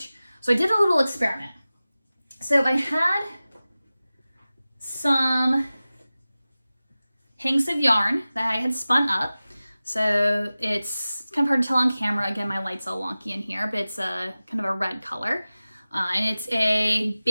So I did a little experiment. So I had some hanks of yarn that I had spun up. So it's kind of hard to tell on camera. Again, my light's all wonky in here, but it's a kind of a red color. And it's a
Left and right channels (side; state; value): both; inverted; correlation -0.97